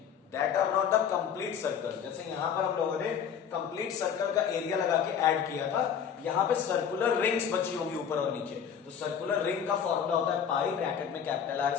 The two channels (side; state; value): right; quieter; 8.0 dB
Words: that are not a complete circle. जैसे यहां पर हम लोगों ने कंप्लीट सर्कल का एरिया लगा के ऐड किया था, यहां पे सर्कुलर रिंग्स बची होगी ऊपर और नीचे, तो सर्कुलर रिंग का फॉर्मूला होता है पाई ब्रैकेट में capital r